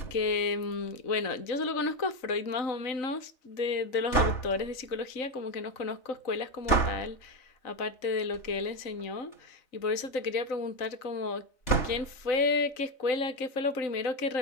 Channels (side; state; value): right; late; 3.4 ms